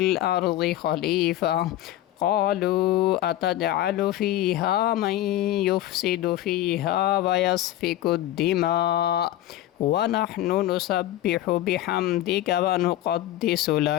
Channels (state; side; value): quieter; right; 13.9 dB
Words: خليفة قالوا أتجعل فيها من يفسد فيها ويسفك الدماء ونحن نسبح بحمدك ونقدس